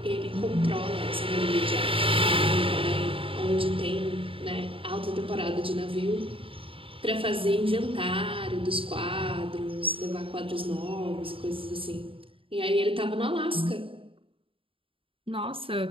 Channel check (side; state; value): left; late; 0.26 ms